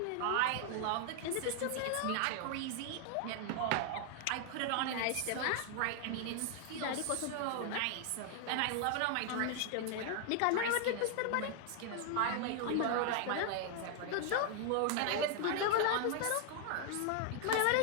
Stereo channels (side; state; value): both; different; correlation 0.00